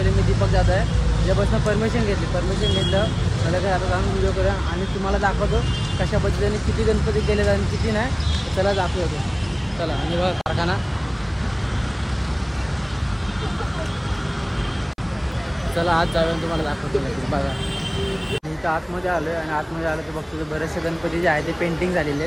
मी दीपक जात आहे, ज्यापासून परमिशन घेतलं मला काय आता जाऊन व्हिडिओ करूया आणि तुम्हाला दाखवतो कशा पद्धतीने किती गणपती केले आणि किती नाही। चला दाखवतो, चला। आणि बघा कारखाना, चला आज जाऊया तुम्हाला दाखवतो। बघा इथं आतमध्ये आलोय आणि आतमध्ये आलं तर बघतो बरेचसे गणपती जे आहे ते पेंटिंग झालेले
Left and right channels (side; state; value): both; identical; correlation 1.00